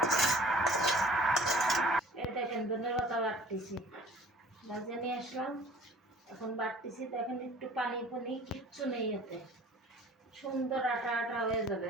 এই দেখেন ধনের পাতা বাটতেছি, ভাজে নিয়ে আসলাম, এখন বাটতেছি। দেখেন একটু পানি পানি কিচ্ছু নেই, এতে সুন্দর আটা আটা হয়ে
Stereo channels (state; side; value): normal; both; correlation 0.48